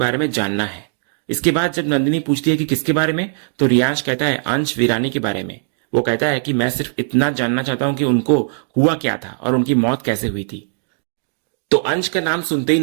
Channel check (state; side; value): silent; left; digital silence